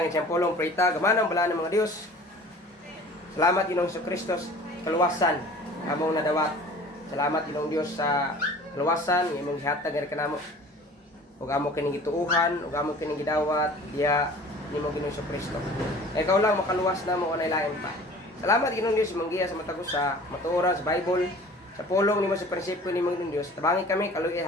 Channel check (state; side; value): normal; both; correlation 0.46